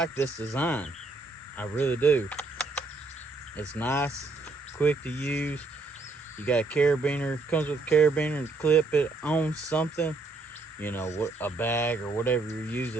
this design. I really do. It's nice, quick to use. You got a carabiner, comes with a carabiner to clip it on something, you know, a bag or whatever you're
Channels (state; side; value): quieter; left; 3.4 dB